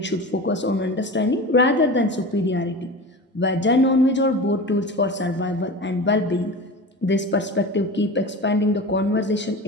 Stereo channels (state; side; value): normal; both; correlation 0.31